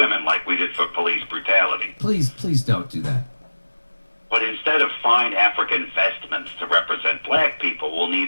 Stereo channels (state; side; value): inverted; both; correlation -1.00